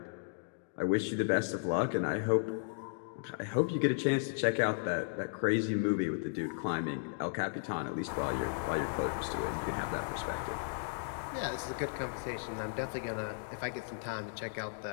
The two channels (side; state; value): right; silent; digital silence